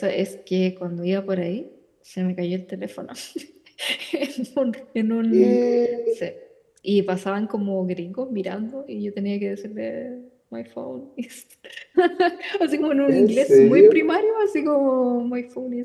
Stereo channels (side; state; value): both; identical; correlation 1.00